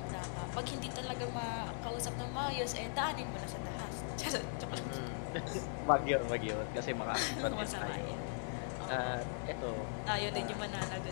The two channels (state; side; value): silent; right; 51 dB below the other